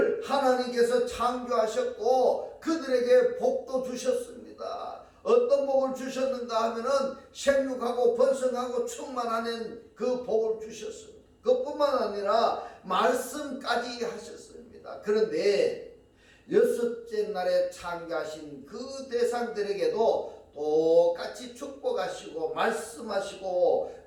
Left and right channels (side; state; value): both; identical; correlation 1.00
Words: 하나님께서 창조하셨고 그들에게 복도 주셨습니다. 어떤 복을 주셨는가 하면은 생육하고 번성하고 충만하는 그 복을 주셨습니다. 그뿐만 아니라 말씀까지 하셨습니다. 그런데 여섯째 날에 창조하신 그 대상들에게도 똑같이 축복하시고 말씀하시고,